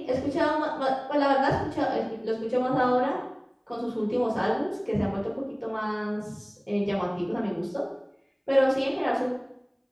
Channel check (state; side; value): identical; both; correlation 1.00